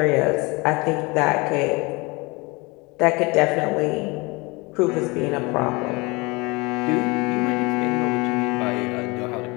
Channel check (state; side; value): quieter; right; 25.9 dB